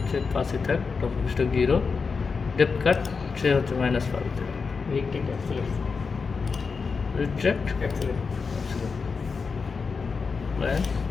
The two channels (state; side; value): quieter; right; 5.0 dB